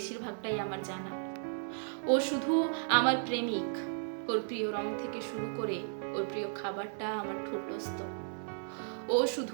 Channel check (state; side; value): silent; left; 55 dB below the other